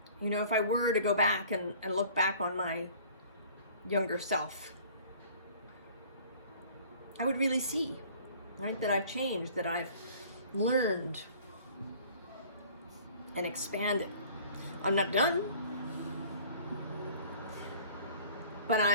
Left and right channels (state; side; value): inverted; both; correlation -0.50